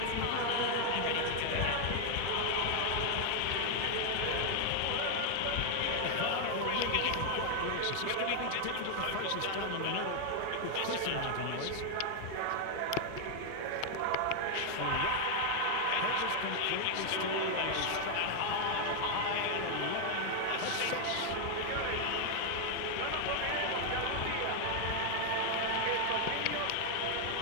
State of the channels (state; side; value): different; both; correlation 0.00